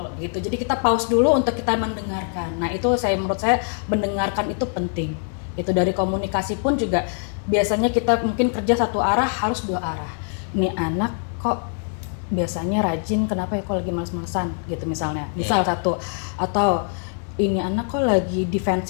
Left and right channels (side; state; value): right; silent; 56 dB below the other